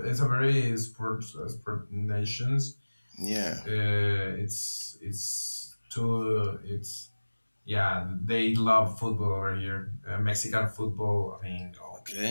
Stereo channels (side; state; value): both; inverted; correlation -1.00